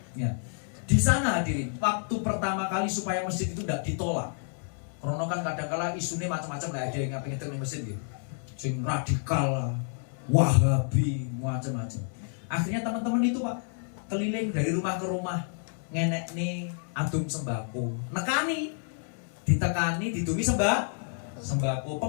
Ya. Di sana hadirin, waktu pertama kali supaya masjid itu tidak ditolak. Karena kan kadang-kala isunya macam-macam lah, ada yang ngapin di masjid gitu. Sing radikal, Wahabi, macam-macam. Akhirnya teman-teman itu Pak keliling dari rumah ke rumah. Ngenek nih adum sembako, nekani, ditekani, ditumi sembako,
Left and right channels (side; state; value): right; silent; 58 dB below the other